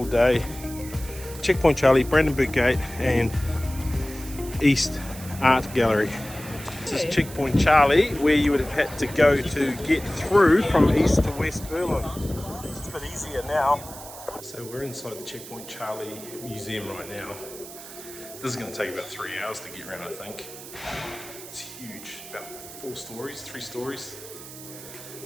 day. Checkpoint Charlie, Brandenburg Gate, and East Art Gallery. This is Checkpoint Charlie, where you would have had to go to get through from east to west Berlin. It's a bit easier now. So we're inside the Checkpoint Charlie Museum right now. This is going to take about 3 hours to get around, I think. It's huge, about 4 stories, 3 stories,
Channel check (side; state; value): right; noise; hiss, 14 dB below the sound